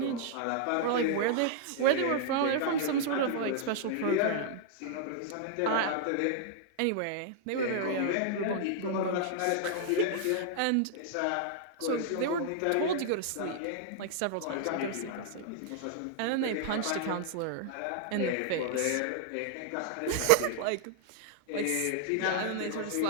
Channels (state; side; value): different; both; correlation -0.01